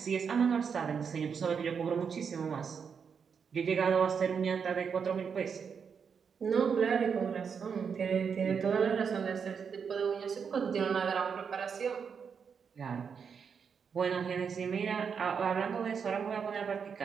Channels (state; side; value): quieter; left; 6.5 dB